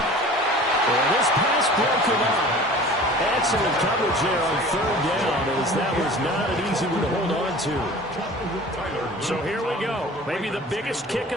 Well, this pass broken up. Excellent coverage there on third down, as that was not an easy one to hold on to. So here we go. Maybe the biggest kick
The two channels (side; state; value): both; normal; correlation 0.42